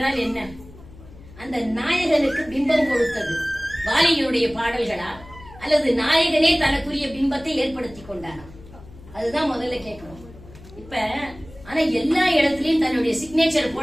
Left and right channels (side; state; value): left; noise; hum, 19 dB below the sound